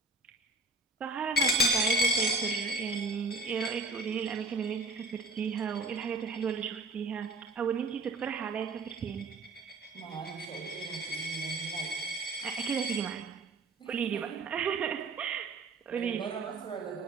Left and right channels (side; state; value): left; quieter; 3.1 dB